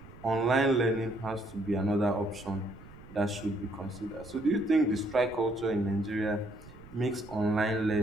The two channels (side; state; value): right; noise; rumble, 19 dB below the sound